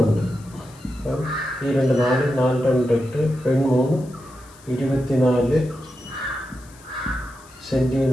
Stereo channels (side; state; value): left; noise; hiss, 25 dB below the sound